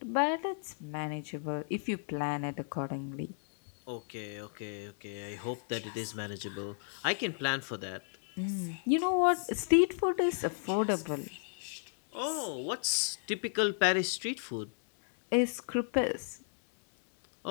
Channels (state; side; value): silent; right; 55 dB below the other